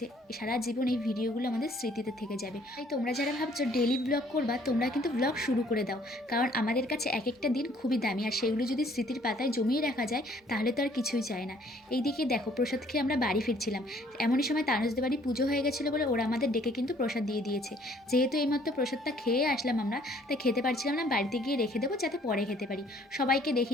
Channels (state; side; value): normal; both; correlation 0.60